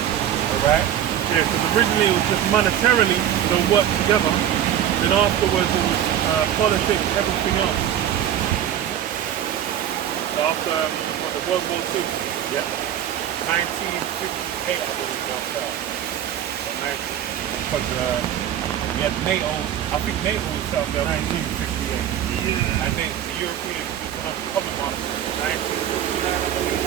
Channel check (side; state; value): left; quieter; 10.4 dB